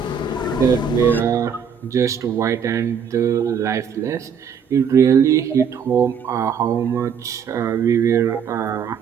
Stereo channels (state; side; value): quieter; left; 7.0 dB